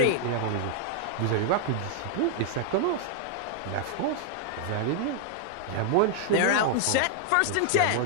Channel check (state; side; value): different; both; correlation 0.00